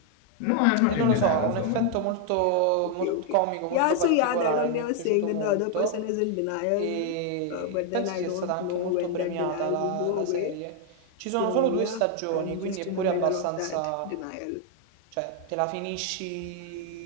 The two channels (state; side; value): different; both; correlation 0.00